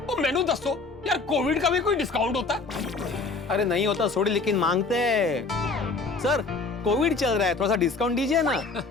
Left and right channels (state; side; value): quieter; right; 4.0 dB